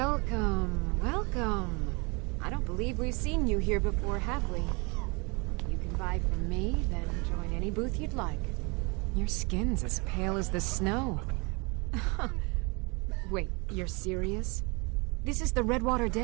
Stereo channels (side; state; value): left; quieter; 29.4 dB